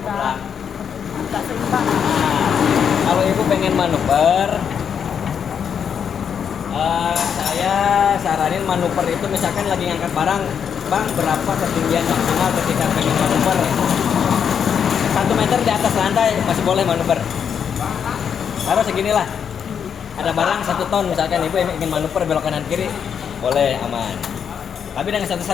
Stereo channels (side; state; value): right; quieter; 7.6 dB